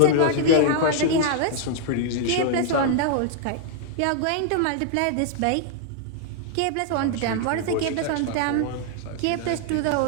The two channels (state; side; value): different; both; correlation -0.01